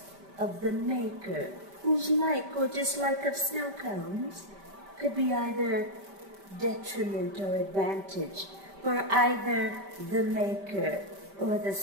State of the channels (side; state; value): left; late; 5.1 ms